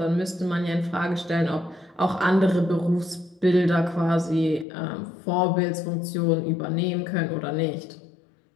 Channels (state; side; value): drops out; right; at 4.7 s